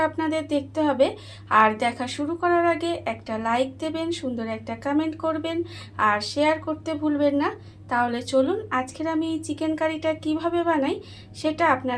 আপনাদের দেখতে হবে। আর দেখা শুরু করার আগে একটা লাইক দেবেন, সুন্দর একটা কমেন্ট করবেন আর শেয়ার করতে ভুলবেন না। তাহলে চলুন আজকের আমি এই চিকেন কারিটা কিভাবে বানাই সেটা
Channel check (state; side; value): identical; both; correlation 1.00